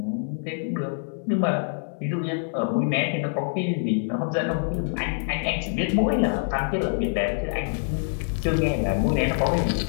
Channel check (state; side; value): silent; right; digital silence